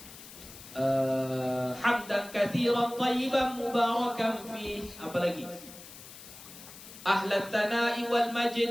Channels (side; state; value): left; noise; hiss, 16 dB below the sound